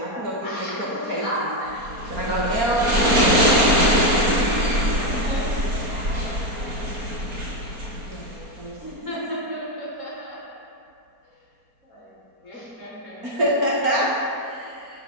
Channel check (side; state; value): left; late; 4.3 ms